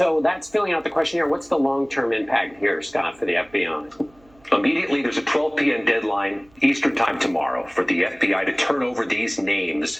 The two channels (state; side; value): noise; right; hum, 30 dB below the sound